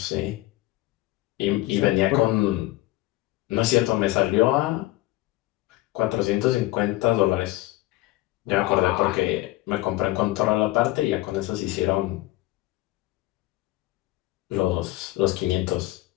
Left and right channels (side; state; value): right; quieter; 18.0 dB